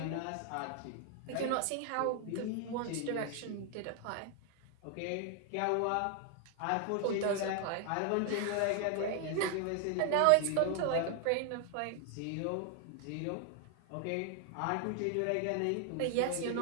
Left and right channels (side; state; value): both; different; correlation 0.00